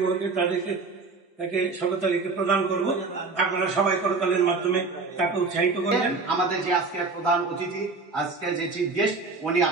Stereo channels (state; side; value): quieter; left; 4.1 dB